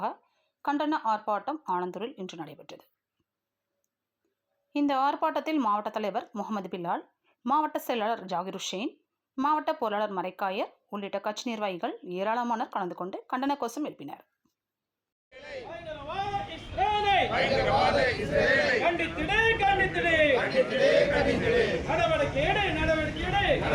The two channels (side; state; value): both; identical; correlation 1.00